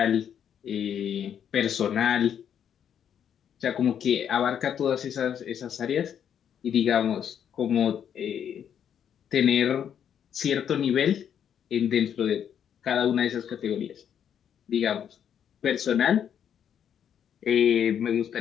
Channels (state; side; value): quieter; right; 8.8 dB